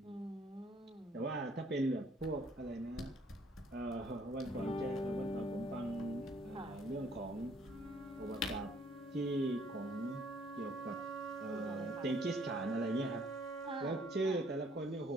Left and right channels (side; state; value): both; normal; correlation 0.62